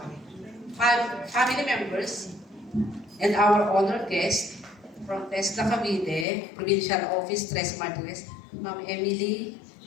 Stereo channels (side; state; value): right; drops out; at 6.2 s